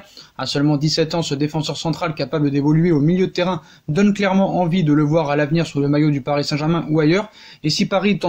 À seulement 17 ans, ce défenseur central capable d'évoluer au milieu de terrain donne clairement envie de le voir à l'avenir sous le maillot du Paris Saint-Germain ou ailleurs. Et si Paris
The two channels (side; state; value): both; identical; correlation 1.00